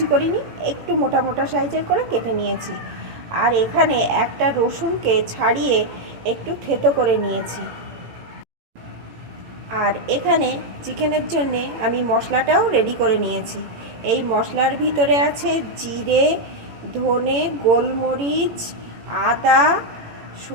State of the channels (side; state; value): left; late; 18 ms